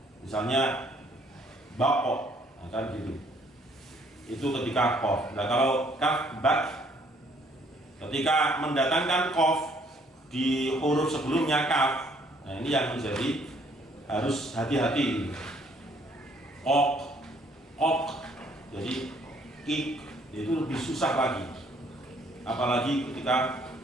Misalnya baqo, kan gitu. Itu ketika qaf. Nah kalau kaf bak, ketika mendatangkan qaf di huruf sebelumnya kaf, nah ini yang menjadi harus hati-hati. Ok, jadi ik itu lebih susah lagi. Apalagi ketika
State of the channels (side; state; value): both; normal; correlation 0.64